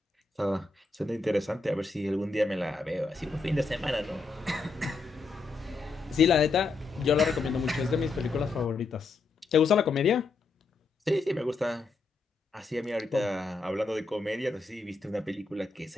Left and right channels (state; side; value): quieter; right; 3.9 dB